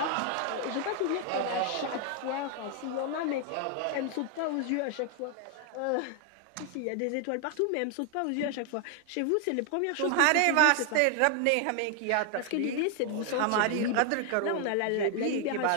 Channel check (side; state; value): both; different; correlation 0.00